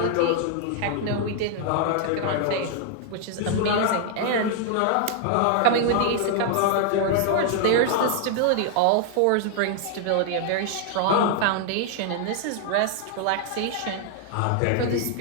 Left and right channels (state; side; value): different; both; correlation 0.00